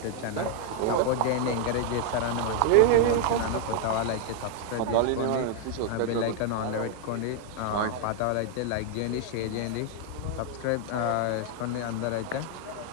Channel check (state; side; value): different; both; correlation 0.00